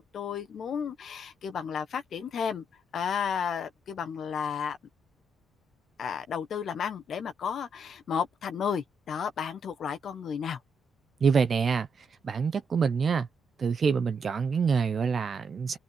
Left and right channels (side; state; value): both; normal; correlation 0.77